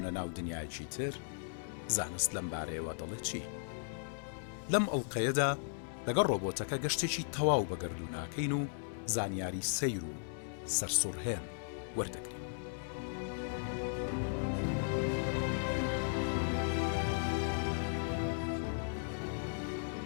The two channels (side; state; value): right; silent; 53 dB below the other